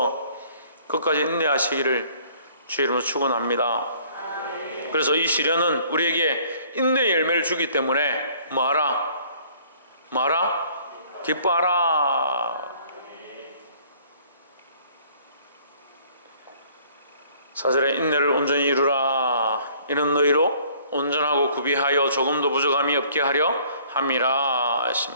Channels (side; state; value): both; inverted; correlation -0.57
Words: 끝까지 인내하시기를 주의 이름으로 축원합니다. 그래서 이 시련은 우리에게 인내의 열매를 주기 때문에 뭐하라? 기뻐하라. 사절에 인내를 온전히 이루라. 이는 너희로 온전하고 구비하여 조금도 부족함이 없게 하려 함이라